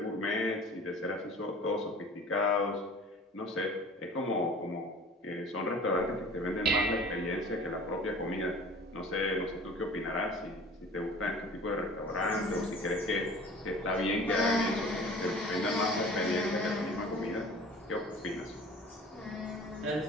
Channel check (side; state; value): both; normal; correlation 0.45